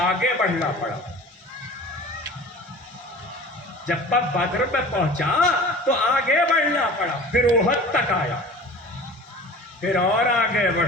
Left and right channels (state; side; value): normal; both; correlation 0.41